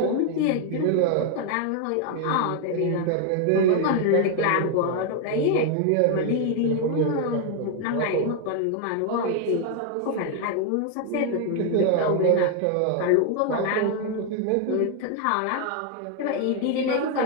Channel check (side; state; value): both; different; correlation 0.01